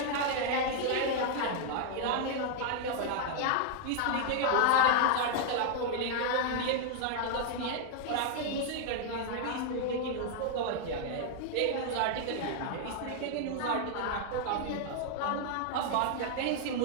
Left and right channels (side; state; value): both; different; correlation 0.00